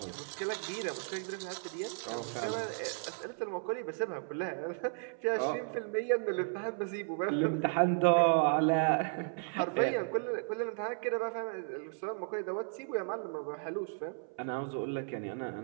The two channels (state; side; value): silent; left; 55 dB below the other